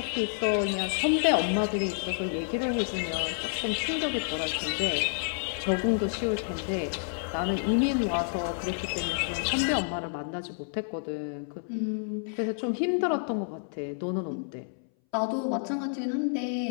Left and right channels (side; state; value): right; silent; 58 dB below the other